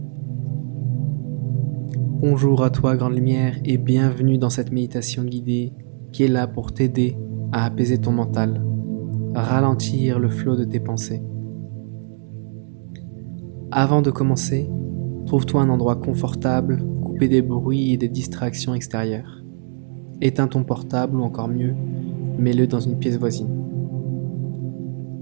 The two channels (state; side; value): silent; left; digital silence